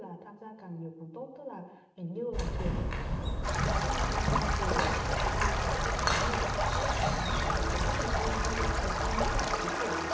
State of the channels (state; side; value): identical; both; correlation 1.00